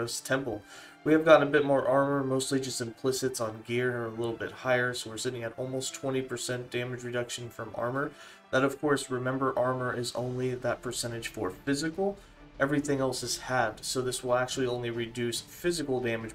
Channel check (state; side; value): identical; both; correlation 1.00